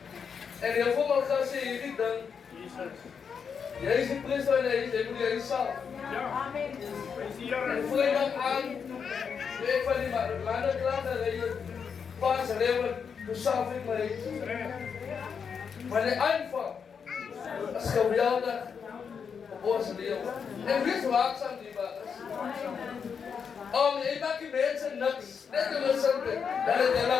En heel veel man gaat zeggen, jullie dan. Jij is de priester en jij moet jij zelf. En vrijdag aan, ik van die mannen klaar dat je pas leven, dus zelf ik mij. Maar de aanval is geweldig op ons leven. En wees waakzaam die baas. Je maakt die mensen niks. Net te recenten, dat is een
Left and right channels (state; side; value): quieter; right; 6.5 dB